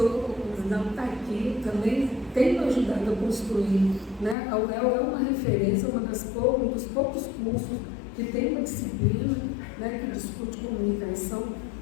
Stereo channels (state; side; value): drops out; right; at 4.4 s